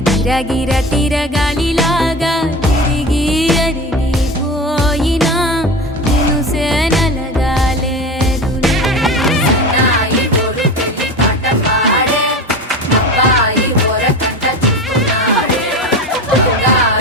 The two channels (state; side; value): normal; both; correlation 0.29